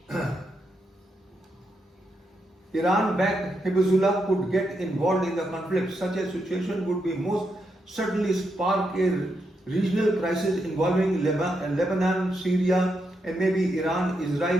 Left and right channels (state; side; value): normal; both; correlation 0.82